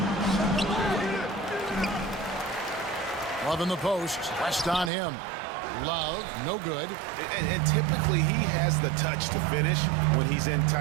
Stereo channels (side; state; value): left; drops out; at 4.9 s